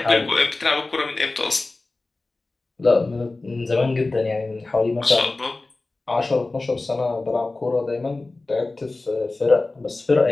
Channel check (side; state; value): right; quieter; 3.2 dB